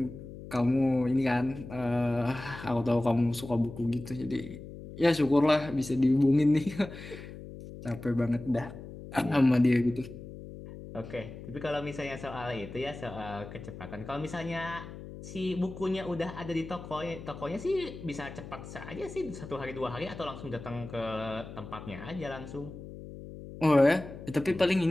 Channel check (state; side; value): noise; left; hum, 13 dB below the sound